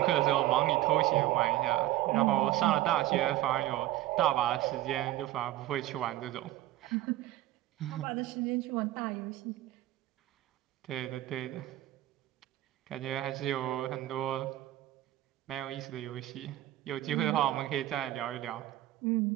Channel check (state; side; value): quieter; left; 15.0 dB